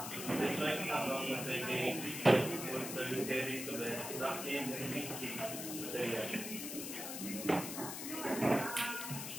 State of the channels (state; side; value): noise; left; hiss, 6 dB below the sound